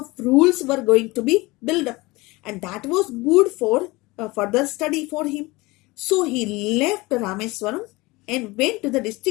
rules were going to be built up, and that was good for further study for him. So he left Rameswaram and went to the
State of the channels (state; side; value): quieter; right; 22.4 dB